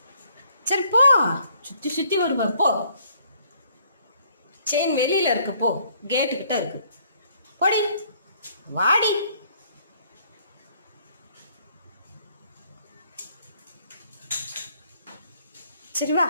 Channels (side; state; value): both; inverted; correlation -0.64